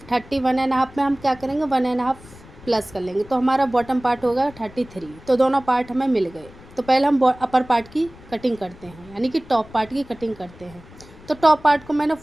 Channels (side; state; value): left; noise; rumble, 21 dB below the sound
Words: 31.5 में हम क्या करेंगे, 1.5 प्लस कर लेंगे, तो हमारा बॉटम पार्ट होगा 33। तो दोनों पार्ट हमें मिल गए। तो पहले हम अपर पार्ट की कटिंग करते हैं, यानी कि टॉप पार्ट की कटिंग करते हैं। तो टॉप पार्ट को मैंने